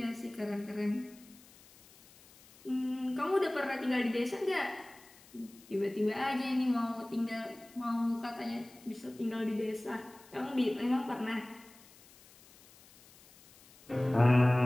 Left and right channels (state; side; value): noise; left; hiss, 24 dB below the sound